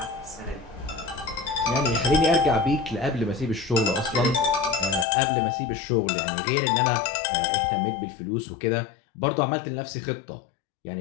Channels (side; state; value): right; drops out; at 5.1 s